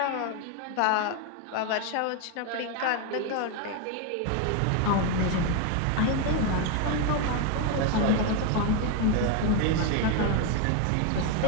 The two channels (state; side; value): different; both; correlation 0.02